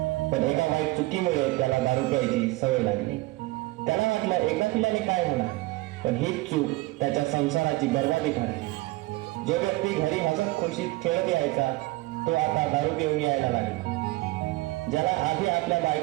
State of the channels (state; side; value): quieter; left; 20.6 dB